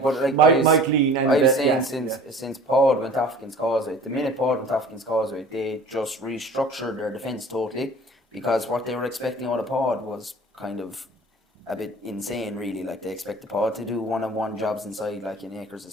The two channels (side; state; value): both; normal; correlation 0.44